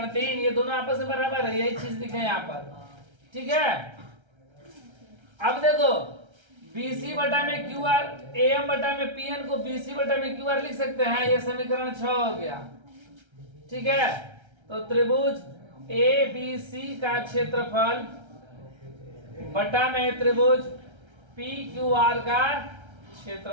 3, ये दोनों आपस में बराबर है, यही चीज लिखे यहाँ पर। ठीक है, अब देखो बीसी बटा में क्यू आर ए एम बटा में पी एन को बीसी बटा में क्यू आर लिख सकते हैं, ये समीकरण 6 हो गया। ठीक है, तो त्रिभुज ए बी सी का क्षेत्रफल बटा में त्रिभुज पी क्यू आर का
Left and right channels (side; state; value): left; late; 1.3 ms